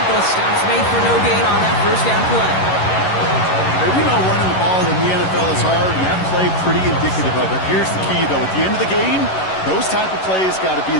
Stops made for no gain on that first down play. We know running the ball in the NFL is hard, and that play pretty indicative of it. Here's the key, though. At the end of the game, those type of plays got to be in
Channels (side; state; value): right; late; 11 ms